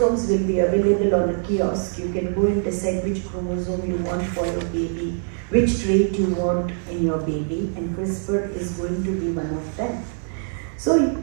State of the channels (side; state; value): left; silent; digital silence